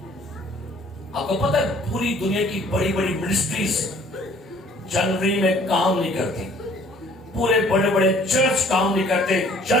آپ کو پتہ ہے پوری دنیا کی بڑی بڑی منسٹریز جنوری میں کام نہیں کرتی, پورے بڑے بڑے چرچ کام نہیں کرتے.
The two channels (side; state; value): both; normal; correlation 0.56